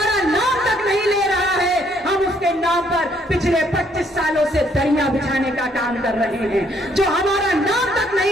बिछाने का काम कर रहे हैं। जो हमारा नाम तक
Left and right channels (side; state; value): both; normal; correlation 0.67